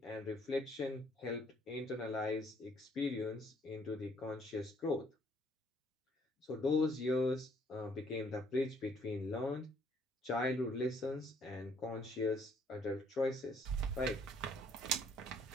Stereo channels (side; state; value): both; normal; correlation 0.65